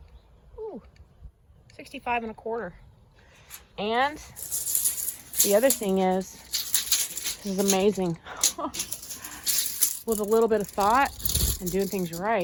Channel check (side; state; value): both; identical; correlation 1.00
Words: Ooh, 65.25. And the other thing is, this is amazing. With a little bit of thought and doing things